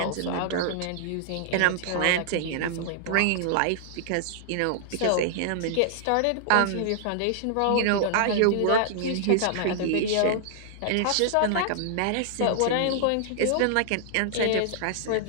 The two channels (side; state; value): both; different; correlation -0.01